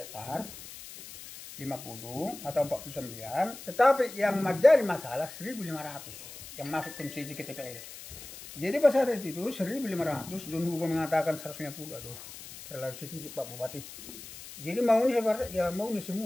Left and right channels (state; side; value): noise; left; hiss, 14 dB below the sound